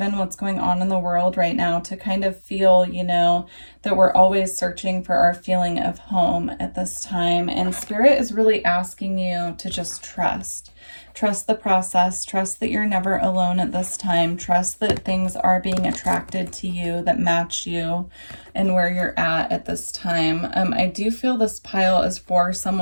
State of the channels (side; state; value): both; inverted; correlation -1.00